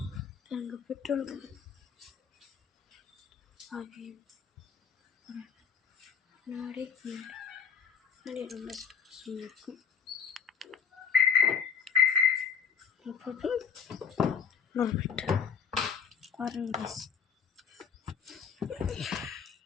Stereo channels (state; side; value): quieter; right; 6.9 dB